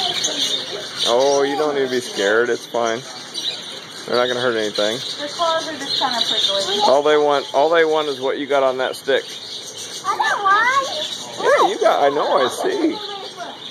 Oh, you don't need to be scared. It's fine. They're not going to hurt anything. Their claws are just kind of prickly. All they want is what you got on that stick. I don't want. Yeah, you got, I know, I see.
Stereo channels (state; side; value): identical; both; correlation 1.00